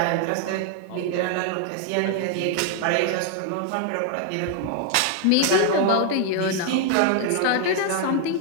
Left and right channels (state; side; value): different; both; correlation 0.00